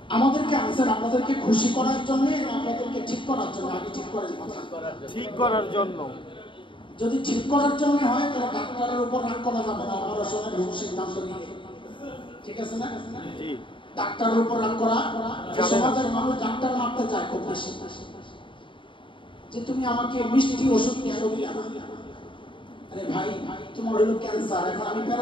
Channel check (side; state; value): right; late; 0.24 ms